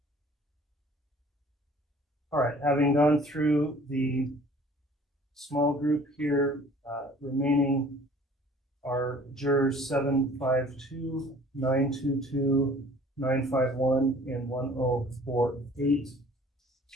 All right, having gone through the small group here, remaining are jurors 752, 922, 951, and 1048.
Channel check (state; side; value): normal; both; correlation 0.51